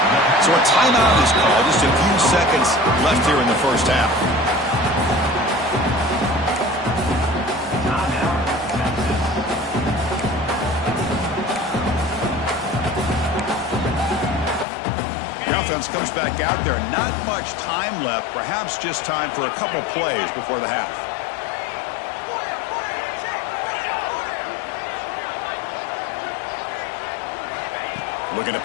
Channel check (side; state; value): right; drops out; at 14.7 s